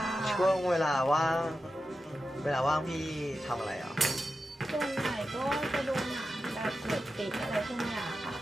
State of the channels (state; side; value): normal; both; correlation 0.91